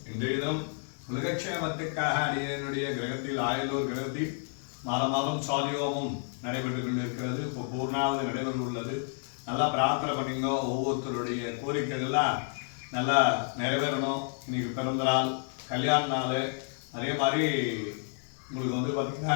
இன்றைய தினம் உலகக்ஷேமத்துக்காக அடியனுடைய கிரகத்தில் ஆயலூர் கிரகத்தில் மாதம் சாலியோமும் நடைபெற்று கொண்டிருக்கிறது. இப்போ பூர்ணாவது நடைபெற உள்ளது. நல்லா பிரார்த்தனை பண்ணிங்க. ஒவ்வொருத்தருடைய கோரிக்கைகள்லாம் நல்லா நிறைவேறணும். இன்னைக்கு பிறந்த நாள், கல்யாண நாள், அதே மாதிரி உங்களுக்கு வந்து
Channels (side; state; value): right; silent; 58 dB below the other